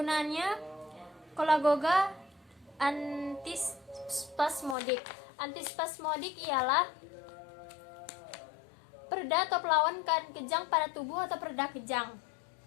Cholagoga antispasmodik. Antispasmodik ialah pereda atau pelawan kejang pada tubuh atau pereda kejang.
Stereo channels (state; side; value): drops out; right; at 4.8 s